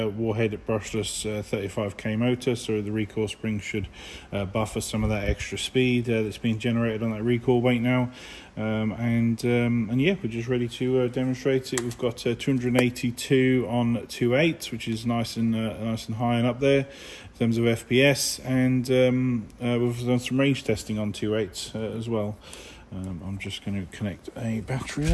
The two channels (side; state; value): both; identical; correlation 1.00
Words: Warhead brushless 35k motor, so the recoil spring should buffer some of that extra speed that's being generated on that recoil weight now. And yeah, we're just ready to demonstrate it. We've got 282 on 2.8, which is nice and high and up there in terms of FPS, and we've done some range testing on 2.8 as well. I'm just going to connect a battery